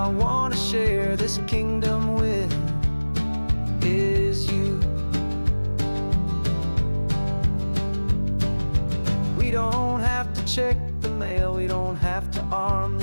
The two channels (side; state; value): both; inverted; correlation -1.00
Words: want to share this kingdom with is you. We don't have to check the mail, we don't have to arm